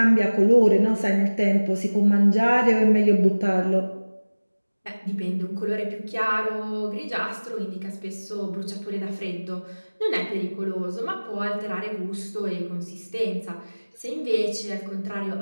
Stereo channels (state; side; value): inverted; both; correlation -1.00